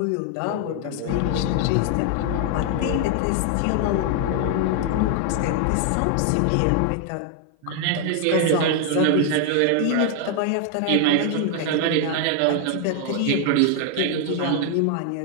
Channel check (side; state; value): both; different; correlation 0.00